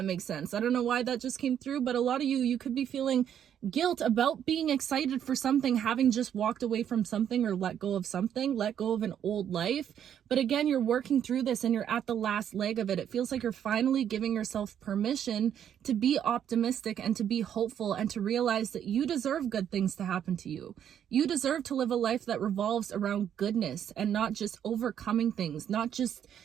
makes sense. I don't know why that just came through, but a lot of you could be feeling guilt about being excited for something, having just walked away from something or let go of something, let go of an old life. But again, you're working through this and you're at the last leg of it. It feels like you're finally giving yourself permission to be optimistic and to be hopeful and to realize that you deserve good things to happen to you. You deserve to live a life that revolves around goodness and not just overcoming things, not just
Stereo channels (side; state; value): left; quieter; 9.4 dB